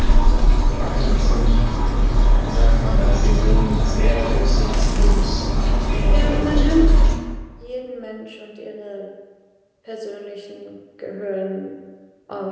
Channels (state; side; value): identical; both; correlation 1.00